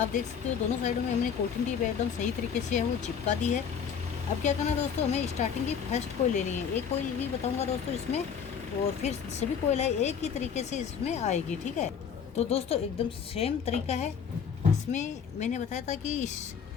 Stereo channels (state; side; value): quieter; right; 7.2 dB